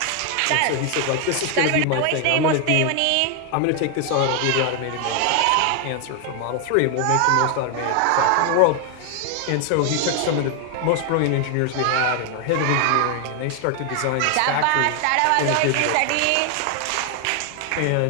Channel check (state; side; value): different; both; correlation 0.00